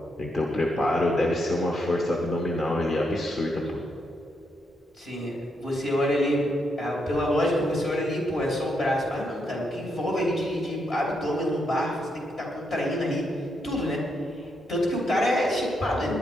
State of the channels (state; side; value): normal; both; correlation 0.80